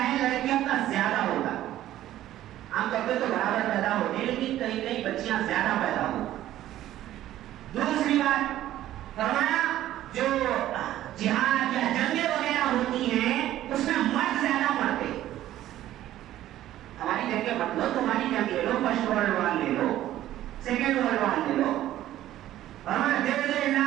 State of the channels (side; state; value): left; quieter; 13.4 dB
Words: ہے لڑکیوں کا زیادہ ہوتا ہے. عام طور پہ تو برابر پیدا ہوتے ہیں، لیکن کئی کئی بچیاں زیادہ پیدا ہوتی. دوسری بات فرمایا جو جہاد یا جنگیں وغیرہ ہوتی ہیں اس میں مرد زیادہ مرتے. ہماری جنگیں مت لو، تمہاری جنگ لے لو، فرسٹ ورلڈ وار لے لو، سیکنڈ ورلڈ وار لے لو. ہمارے 1.5